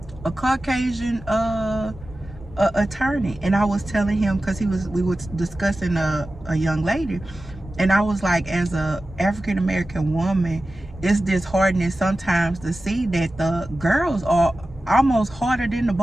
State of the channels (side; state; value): both; normal; correlation 0.95